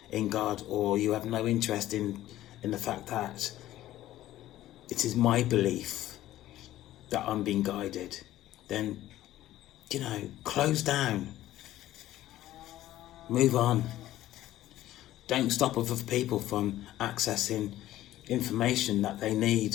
in God, or you have no interest in the fact that it is my belief that I'm being guided, then, close down. Move on. Don't stop other people from accessing information that they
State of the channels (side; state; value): right; quieter; 14.3 dB